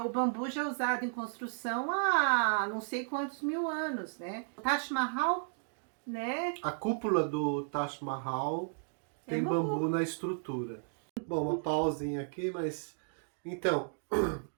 o bambu já é usado em construção há não sei quantos mil anos, né? O Taj Mahal, né? A cúpula do Taj Mahal tem bambu na estrutura. Bom, uma pausinha aqui, mas... Então,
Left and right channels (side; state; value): left; silent; digital silence